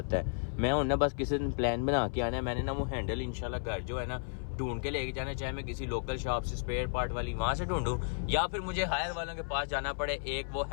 है। मैं हूँ ना बस किसी दिन प्लान बना के आना है, मैंने ना वो हैंडल इंशाल्लाह घर जो है ना ढूंढ के लेके जाना, चाहे मैं किसी लोकल शॉप से स्पेयर पार्ट वाली वहाँ से ढूंढूं या फिर मुझे हायर वालों के पास जाना पड़े एक वो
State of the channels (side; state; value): right; silent; 56 dB below the other